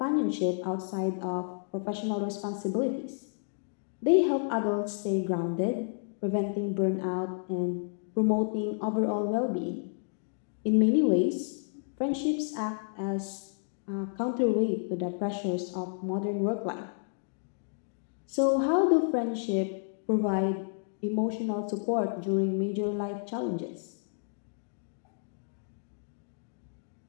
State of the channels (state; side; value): silent; right; digital silence